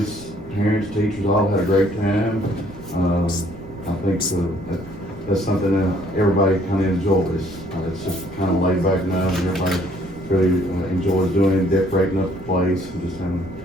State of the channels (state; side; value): noise; right; rumble, 19 dB below the sound